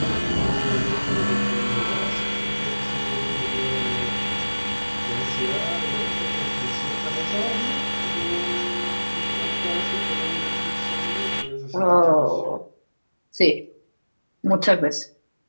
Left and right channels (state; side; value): inverted; both; correlation -1.00